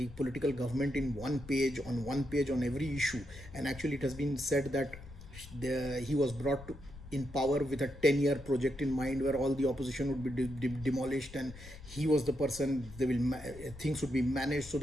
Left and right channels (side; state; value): left; noise; rumble, 16 dB below the sound